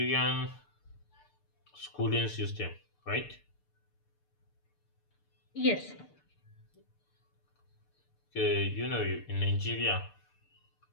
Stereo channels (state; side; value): late; right; 6.8 ms